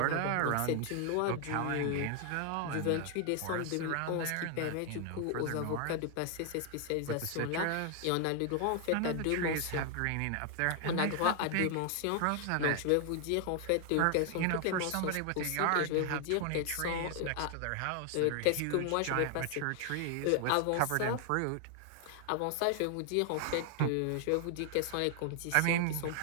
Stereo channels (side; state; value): both; different; correlation 0.00